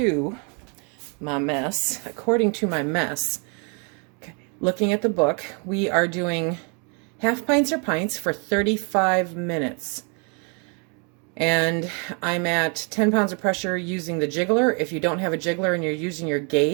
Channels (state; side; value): quieter; left; 36.6 dB